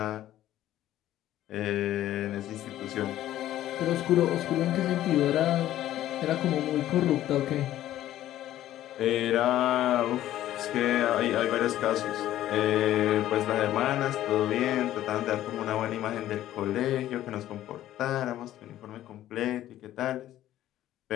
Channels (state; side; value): quieter; right; 13.3 dB